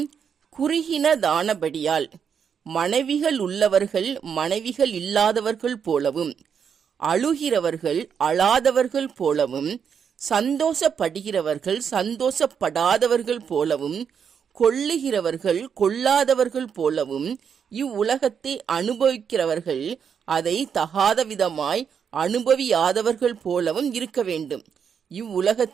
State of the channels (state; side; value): quieter; left; 7.2 dB